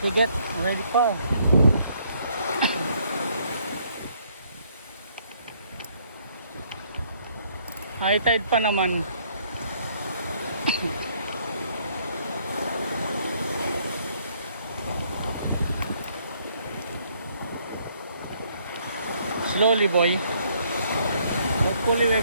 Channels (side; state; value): both; inverted; correlation -0.67